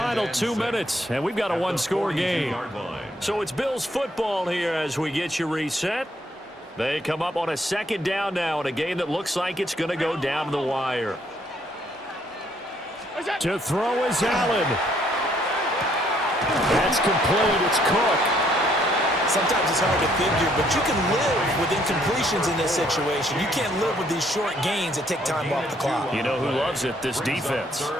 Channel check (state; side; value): normal; both; correlation 0.67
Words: 2 minutes, and we've got a one-score game. So it's Bills football here as we get you reset. They come up on a 2nd down now in a game that looks like it's going to go down to the wire. To throw is Allen. That's complete. It's Cook. Sometimes it's hard to figure, but you can live with incompletions in this situation. You can't live with these short gains that take time off the clock. You know who loves it? This defense.